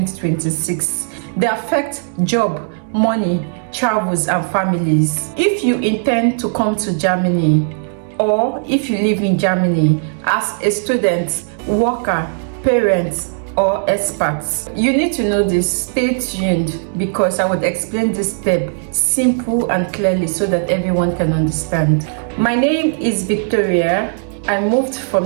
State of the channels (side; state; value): left; silent; digital silence